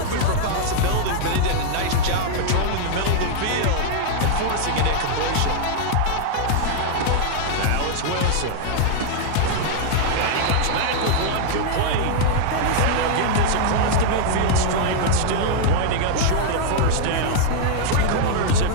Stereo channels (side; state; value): both; different; correlation -0.01